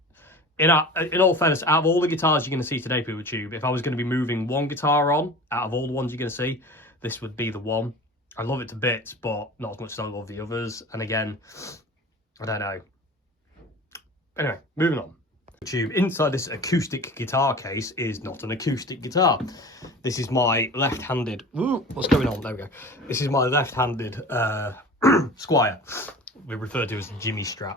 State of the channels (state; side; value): normal; both; correlation 0.38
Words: In all fairness, out of all the guitars you're going to see today, PeopleTube, if I was going to be moving one guitar on, out of all the ones you're going to see, this would be the one. I love it to bits, but not as much as I love the others. And again, I don't know. Anyway, moving on. PeopleTube, inside this acoustic guitar case is not an acoustic guitar. This is my left-handed... Ooh, what's going on? There we go. This is my left-handed Squier. We refer to as the Jimmy Strat.